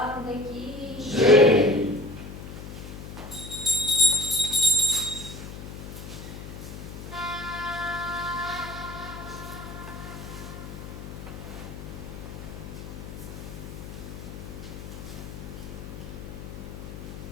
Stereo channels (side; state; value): left; noise; hum, 10 dB below the sound